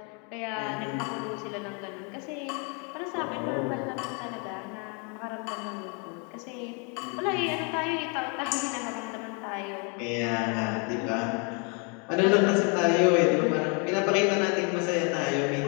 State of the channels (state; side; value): quieter; right; 35.3 dB